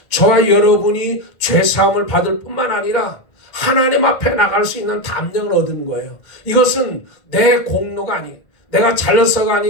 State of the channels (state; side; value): late; right; 2.1 ms